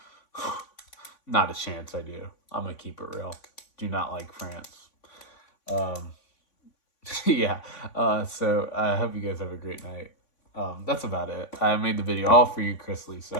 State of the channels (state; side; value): late; right; 3.5 ms